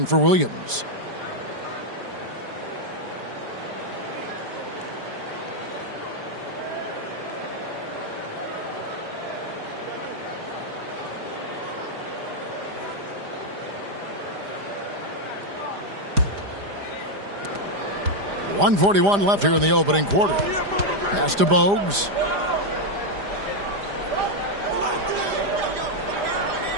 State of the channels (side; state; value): left; late; 5.0 ms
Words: for Williams. .141 left here in the opening quarter. Pass to Bogues.